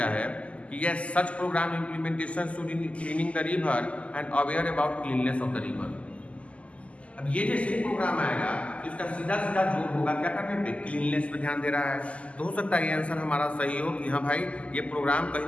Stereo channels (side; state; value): right; late; 0.063 ms